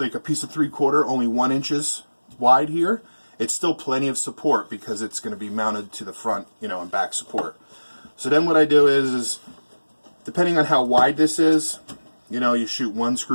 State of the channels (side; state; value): both; inverted; correlation -1.00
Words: a piece of 3/4, only 1 inches wide here. It's still plenty of support because it's going to be mounted to the front, you know, and back support. So then what I do is depending on how wide this is, you know, you shoot 1